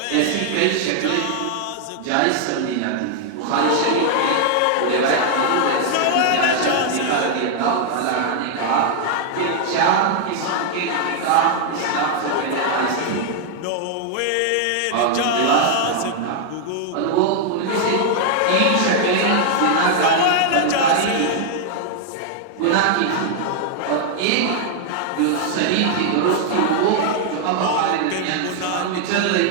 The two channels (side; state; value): both; different; correlation 0.00